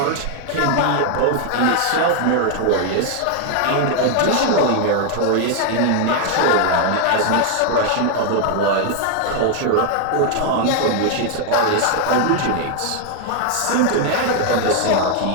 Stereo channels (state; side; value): different; both; correlation 0.00